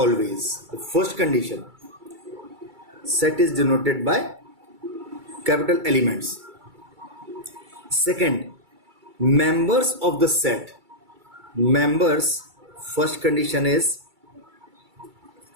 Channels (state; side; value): late; left; 2.3 ms